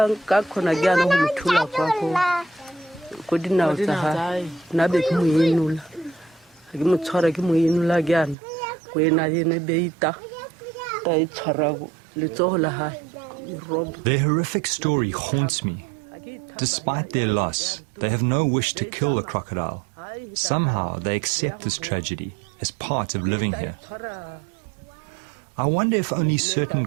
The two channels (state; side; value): drops out; left; at 8.3 s